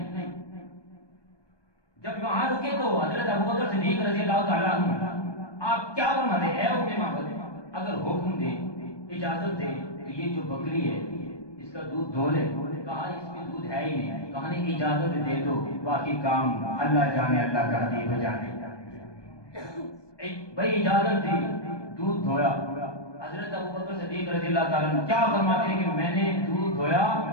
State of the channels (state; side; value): late; right; 1.2 ms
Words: جب وہاں رکے تو حضرت ابوبکر صدیق رضی اللہ تعالیٰ عنہ آپ کیا فرماتے ہیں؟ اے ام معبد، اگر حکم دے، اجازت دے تو یہ جو بکری ہے اس کا دودھ دھو لے. کہا اس میں دودھ ہے ہی نہیں. کہا نہیں اجازت دے دو، باقی کام اللہ جانے، اللہ کا حبیب جانے. بھائی اجازت دی، دودھ دھویا. حضرت ابوبکر صدیق رضی اللہ تعالیٰ عنہ کیا فرماتے ہیں کہ میں نے دودھ دھویا